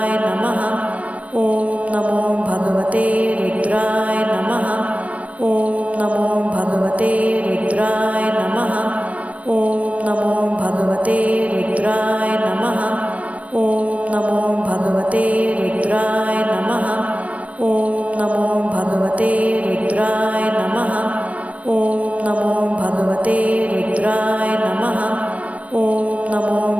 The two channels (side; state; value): left; late; 0.067 ms